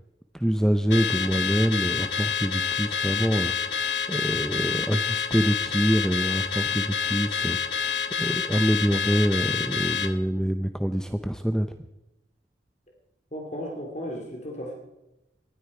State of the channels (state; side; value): normal; both; correlation 0.78